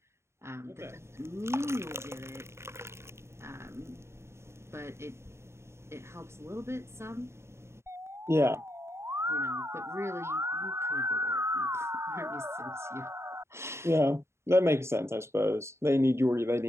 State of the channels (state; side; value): late; left; 0.13 ms